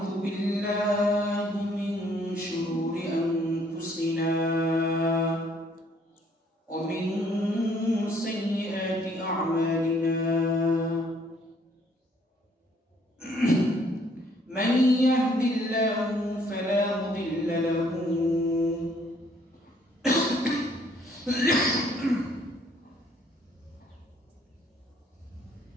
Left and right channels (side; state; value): both; normal; correlation 0.64